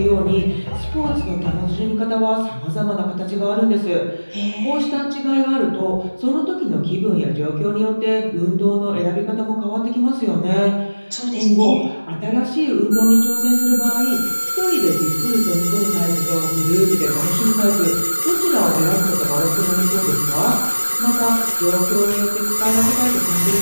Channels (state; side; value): inverted; both; correlation -1.00